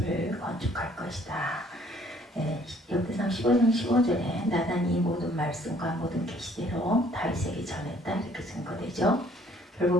건축할 것이다. 역대상 15장 15절에 나단이 모든 말씀과 모든 계시대로 다윗에게 전했다, 이렇게 증거되죠.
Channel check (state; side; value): normal; both; correlation 0.60